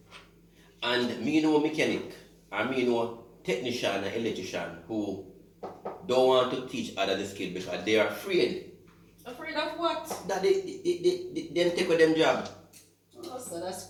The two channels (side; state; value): both; identical; correlation 1.00